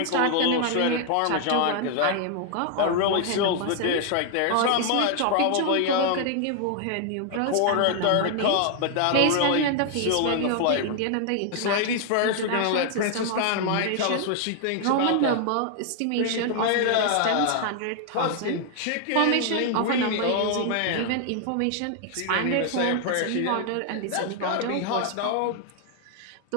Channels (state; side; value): different; both; correlation 0.00